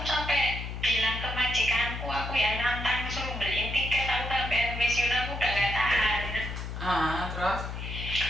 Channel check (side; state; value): left; noise; hum, 6 dB below the sound